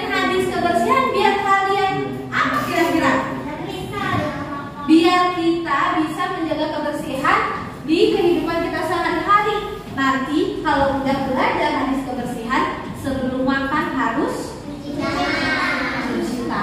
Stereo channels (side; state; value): both; identical; correlation 1.00